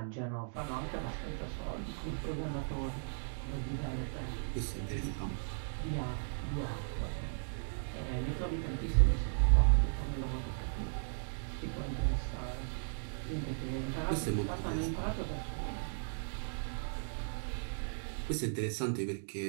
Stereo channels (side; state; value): left; silent; digital silence